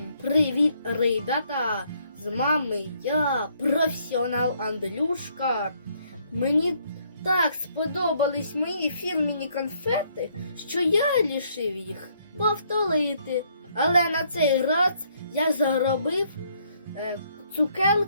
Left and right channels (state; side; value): inverted; both; correlation -0.68